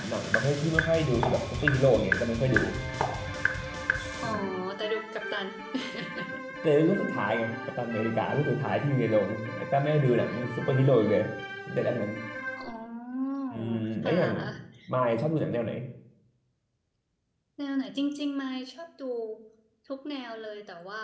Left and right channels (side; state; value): both; identical; correlation 1.00